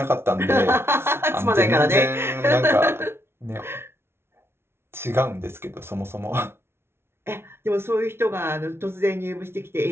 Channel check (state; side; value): late; left; 0.12 ms